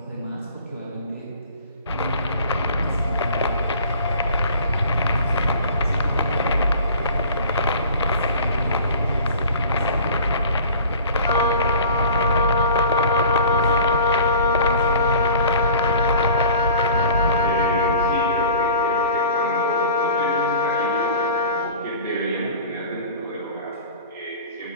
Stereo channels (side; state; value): both; inverted; correlation -0.43